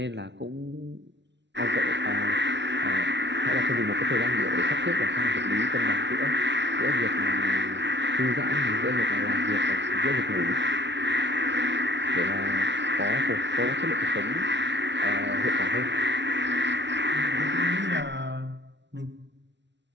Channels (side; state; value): left; late; 0.51 ms